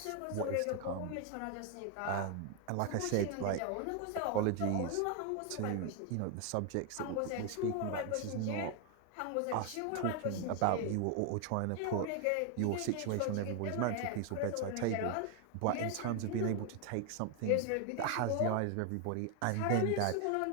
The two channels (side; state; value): both; different; correlation 0.01